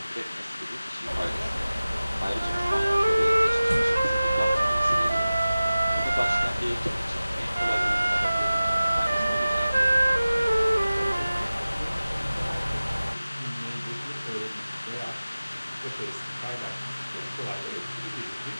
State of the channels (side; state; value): both; inverted; correlation -0.97